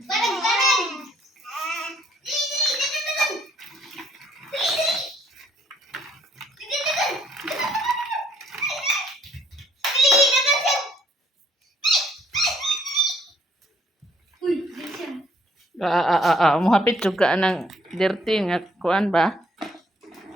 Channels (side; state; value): both; normal; correlation 0.66